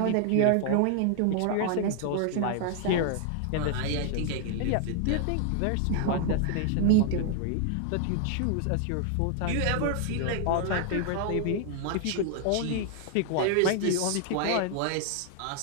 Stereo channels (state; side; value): different; both; correlation 0.00